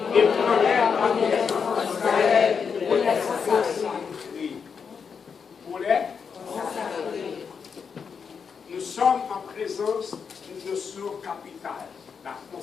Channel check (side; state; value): right; quieter; 6.2 dB